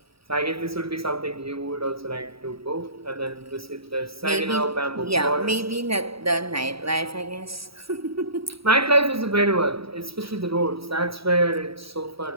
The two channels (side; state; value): left; late; 0.76 ms